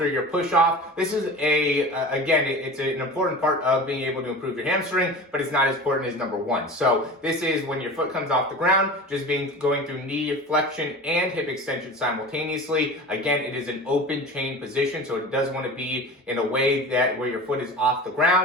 your push-off. This is it's an important part of being able to improve your hamstring, but it's not as important as number one. So this is when your foot comes off the ground, just going through knee flexion and hip extension simultaneously. Again, it is an open chain position, so it does want to be in a way that where your foot is off the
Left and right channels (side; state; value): both; normal; correlation 0.34